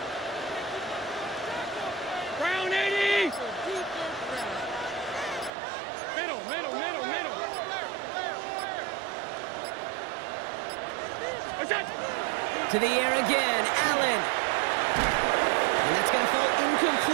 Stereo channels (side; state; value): left; drops out; at 5.5 s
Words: Brown 80. Middle. What's that? To the air again, Allen. And that's going to fall